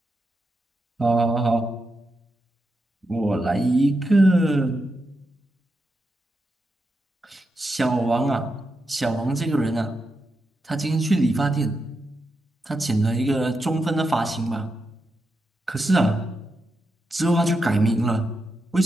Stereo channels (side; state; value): both; normal; correlation 0.86